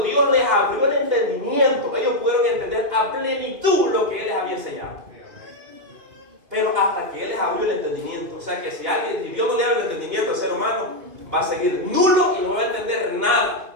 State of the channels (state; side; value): late; left; 2.5 ms